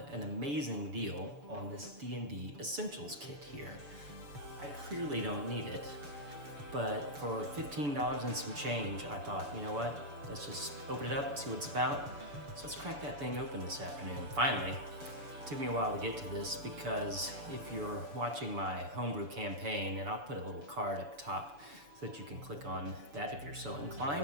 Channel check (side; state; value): left; late; 6.9 ms